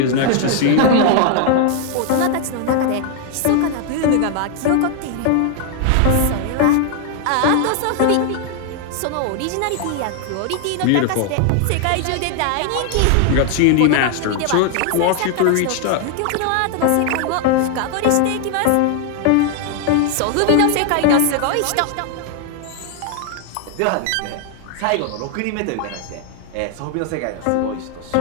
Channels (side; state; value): both; different; correlation 0.00